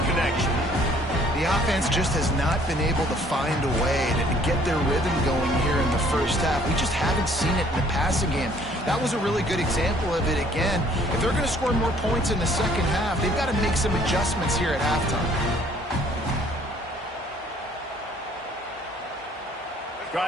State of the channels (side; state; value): both; normal; correlation 0.59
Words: connection. The offense just has not been able to find a way to get their rhythm going here in the first half. We just haven't seen it in the passing game. That was a really good example of it again. If they're going to score more points in the second half, they've got to make some adjustments here at halftime.